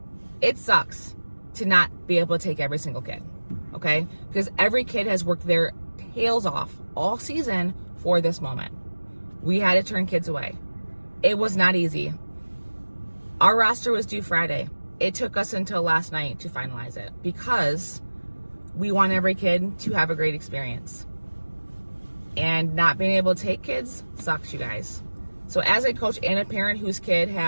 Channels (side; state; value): both; inverted; correlation -1.00